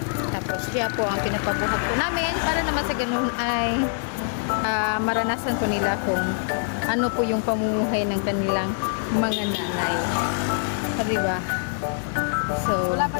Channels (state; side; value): silent; right; 62 dB below the other